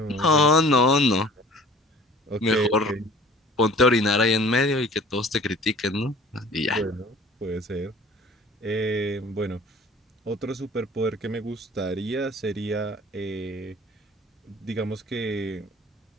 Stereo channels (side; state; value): both; normal; correlation 0.47